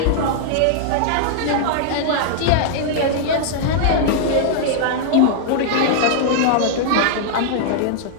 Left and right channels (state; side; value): different; both; correlation -0.01